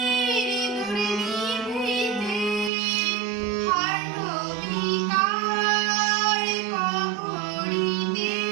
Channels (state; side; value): drops out; left; at 2.7 s